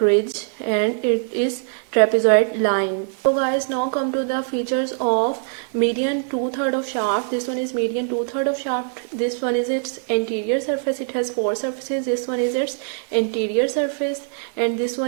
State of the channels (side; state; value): left; silent; digital silence